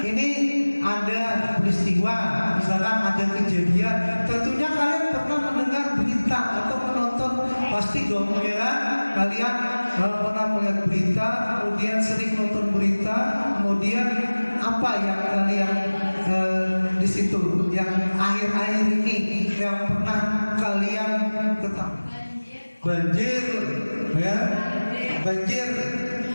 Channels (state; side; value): inverted; both; correlation -1.00